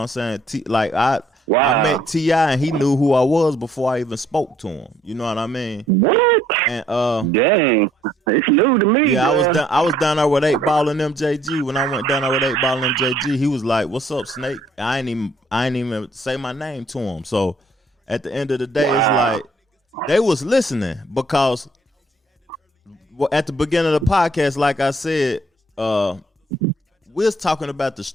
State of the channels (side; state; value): both; normal; correlation 0.65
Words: I'm saying? I met T.I. and he knew who I was before I even spoke to him. You know what I mean? What? And dang, it's new to me. Yeah, bro. I was down there with 8 Ball and MJG. When I went down there with 8 Ball and MJG, he was like, "What's up, Snake?" I ain't even say my name to him. So at the end of the day, it's like they was listening because at the beginning of the podcast, like I said, we was talking about the